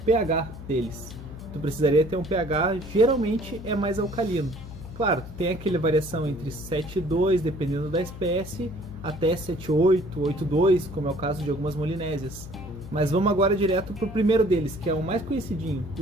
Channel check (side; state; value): left; noise; hum, 13 dB below the sound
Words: deles. Tu precisaria ter um pH, geralmente é mais alcalino. Claro, tu tem aquela variação entre 7,2, dependendo da espécie, até 7,8, 8,2, como é o caso de algumas molinésias. Mas vamos agora direto pro primeiro deles, que é o mais conhecidinho.